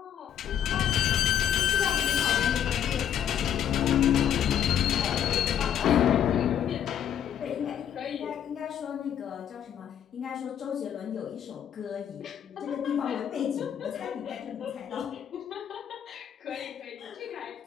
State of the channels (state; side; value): quieter; right; 9.5 dB